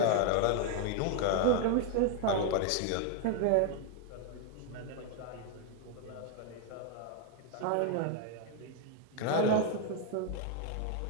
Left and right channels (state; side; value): different; both; correlation 0.00